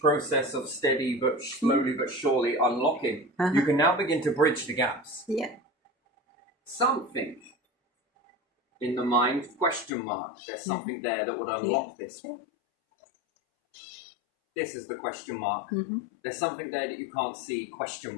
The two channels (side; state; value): right; drops out; at 9.9 s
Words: of steady but slowly but surely unlocking, you can now begin to bridge the gaps. Yeah. Something in the mind, question mark. There's something there that would unlock this. This is the question mark. There's something there that you can't see, question